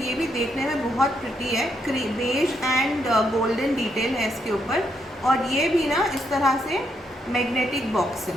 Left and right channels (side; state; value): both; normal; correlation 0.77